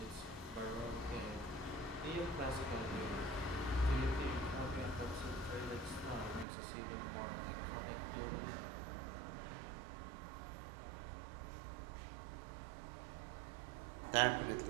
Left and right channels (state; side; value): drops out; left; at 6.5 s